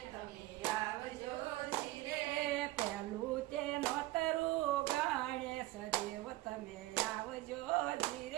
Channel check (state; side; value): quieter; left; 17.9 dB